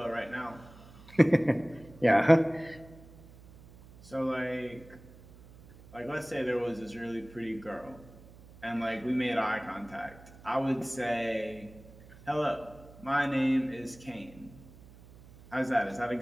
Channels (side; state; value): right; noise; hum, 21 dB below the sound